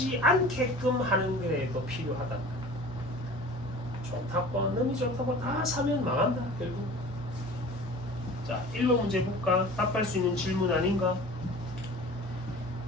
않게끔 하는 거에도 필요하다. 좋다고 너무 좋다고 다 사면 망한다 결국. 자, 1번 문제 볼까? 답할 수 있는 질문 아닌가?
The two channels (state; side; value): normal; both; correlation 0.42